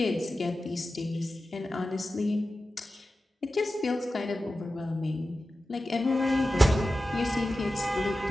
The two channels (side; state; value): both; normal; correlation 0.94